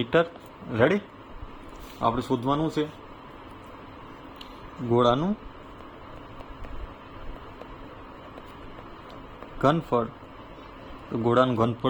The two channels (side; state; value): both; identical; correlation 1.00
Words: રેડી? આપણે શોધવાનું છે ગોળાનું ઘનફળ. તો ગોળાનું